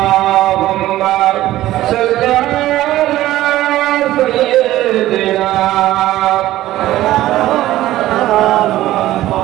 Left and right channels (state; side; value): quieter; left; 15.1 dB